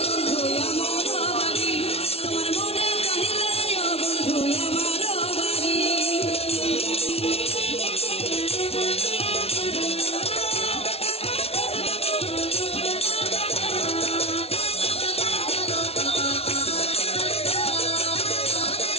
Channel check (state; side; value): late; right; 0.30 ms